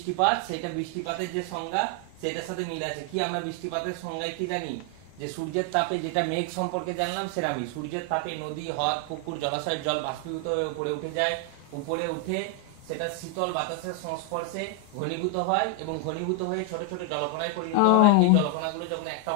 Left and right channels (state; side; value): different; both; correlation 0.00